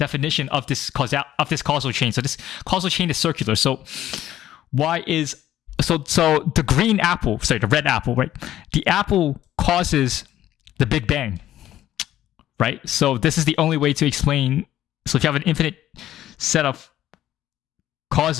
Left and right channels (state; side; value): quieter; right; 12.8 dB